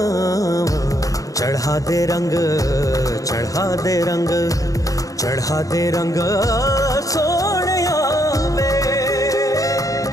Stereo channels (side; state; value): right; late; 0.17 ms